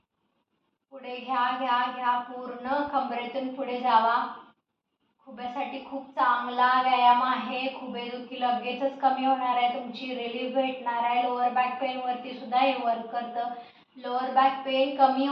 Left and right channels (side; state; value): both; identical; correlation 1.00